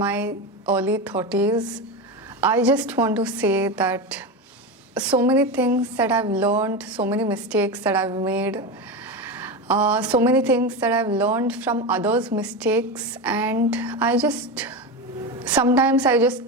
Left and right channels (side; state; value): both; normal; correlation 0.19